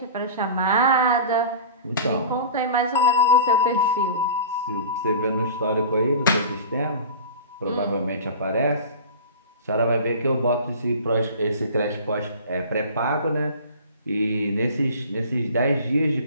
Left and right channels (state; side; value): inverted; both; correlation -0.37